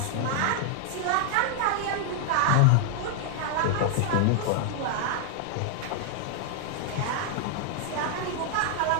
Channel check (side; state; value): both; different; correlation 0.00